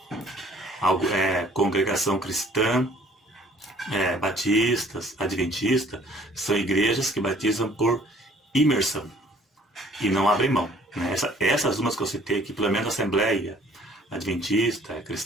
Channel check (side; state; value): both; normal; correlation 0.57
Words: Congregação Cristã, batistas, adventistas, são igrejas que batizam por imersão e não abrem mão, né? Essas umas que eu citei aqui, pelo menos a Assembleia Adventista,